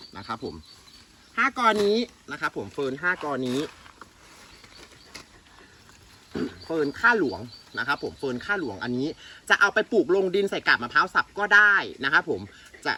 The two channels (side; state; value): both; identical; correlation 1.00